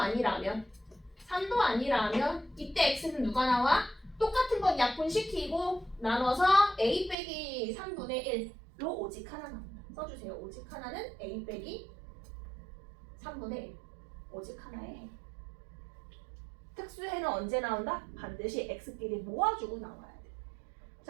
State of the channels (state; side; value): drops out; left; at 7.2 s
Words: 3도 아니라면 이때 x는 누가 나와? 똑같은 건 약분시키고 나눠서 a 빼기 3분의 1로 오직 하나 나온다. 써주세요. 오직 하나는 a 빼기 3분의 1 오직 하나의 해. 특수해는 언제 나온다? 반드시 x끼리 모아주고 나와야 돼.